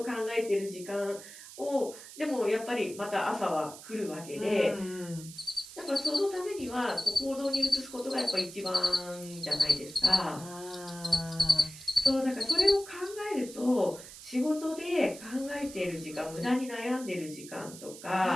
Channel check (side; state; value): right; noise; hiss, 15 dB below the sound